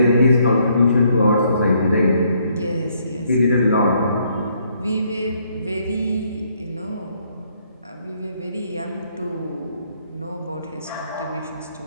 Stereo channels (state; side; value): inverted; both; correlation -0.69